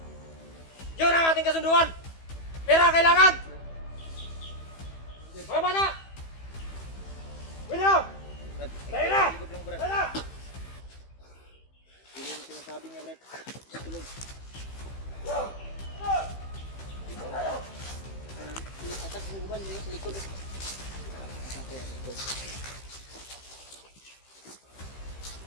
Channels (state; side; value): late; right; 15 ms